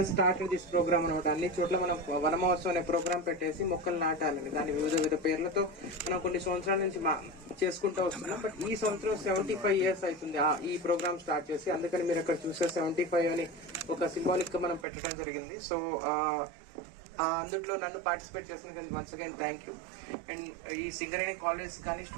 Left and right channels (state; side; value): drops out; left; at 14.9 s